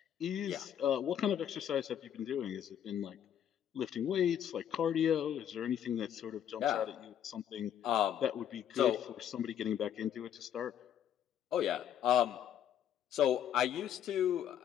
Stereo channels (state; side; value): quieter; right; 9.8 dB